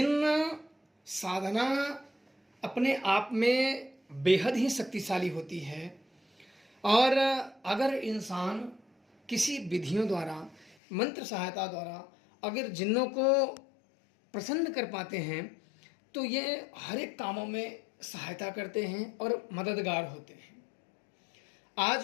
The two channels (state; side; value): drops out; right; at 10.8 s